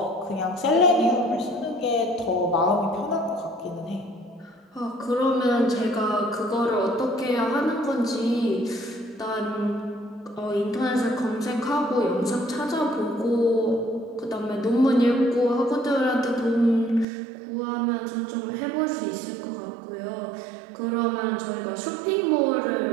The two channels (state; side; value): drops out; left; at 17.1 s